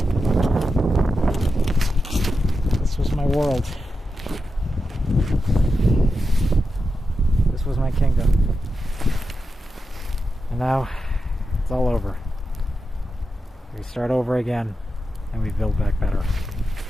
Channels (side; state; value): both; normal; correlation 0.89